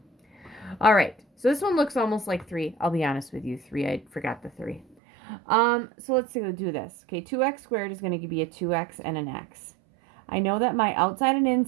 All right, so this one looks almost like 3. I'll be honest with you, 3. I forgot the 3. So let's do this. Okay, 2x squared is going to be a 2x and an x. I know that my outside and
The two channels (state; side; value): drops out; left; at 5.0 s